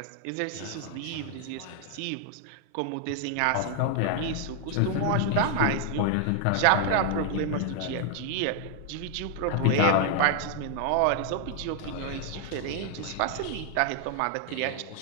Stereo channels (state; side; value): different; both; correlation 0.00